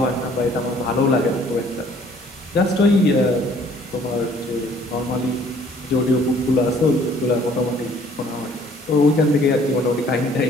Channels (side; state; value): both; normal; correlation 0.58